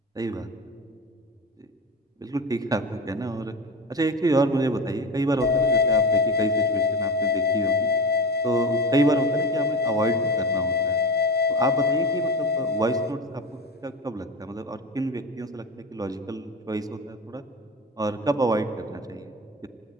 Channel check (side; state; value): both; normal; correlation 0.25